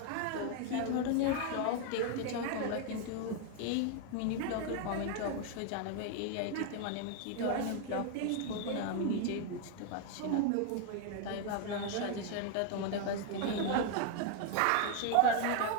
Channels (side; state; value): both; different; correlation 0.00